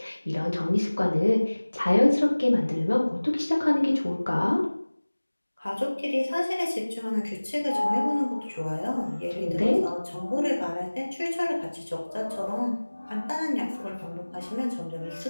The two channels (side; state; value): both; inverted; correlation -1.00